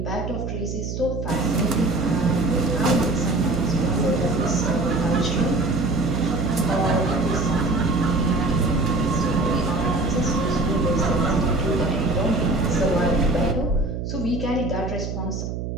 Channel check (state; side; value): noise; right; hum, 5 dB below the sound